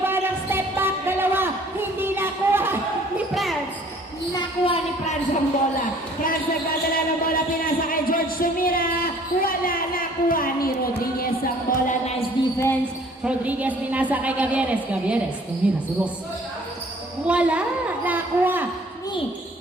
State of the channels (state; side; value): normal; both; correlation 0.55